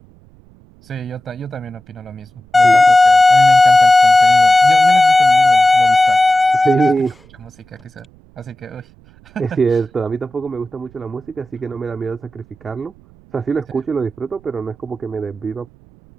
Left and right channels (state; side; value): noise; right; rumble, 28 dB below the sound